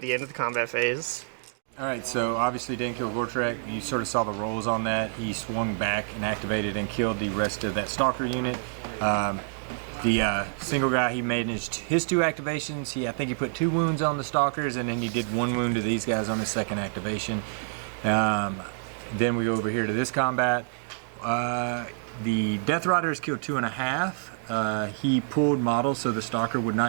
the end of the combat phase. Alright, so obviously didn't kill Gortrek. You sort of saw the rolls on that. He swung back and activated and killed the rest of that Stalker unit. The single guy, he made his 2 activations. I think he put 2 wounds on the Stalkers, and then he did 1 wound to these guys on his 2nd activation. Then we go over here to this combat. The Death Riders killed 2.5. He pulled models so the Stalker would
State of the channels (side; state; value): left; silent; digital silence